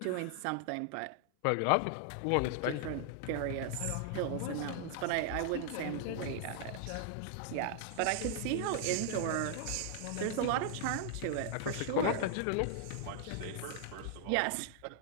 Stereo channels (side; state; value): both; different; correlation 0.00